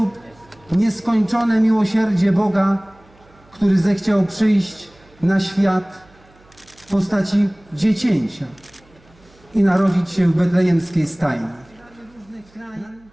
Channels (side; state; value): right; noise; hum, 29 dB below the sound